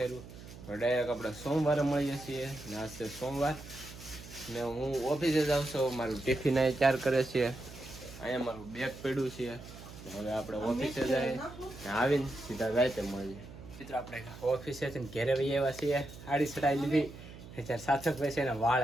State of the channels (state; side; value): noise; right; hum, 15 dB below the sound